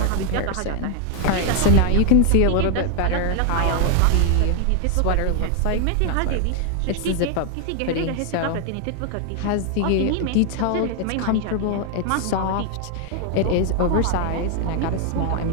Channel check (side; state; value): both; different; correlation 0.00